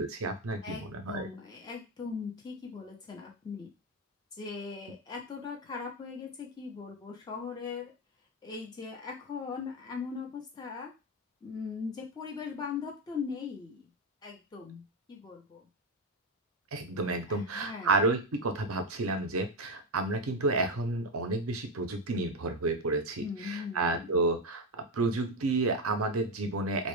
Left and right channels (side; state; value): both; normal; correlation 0.09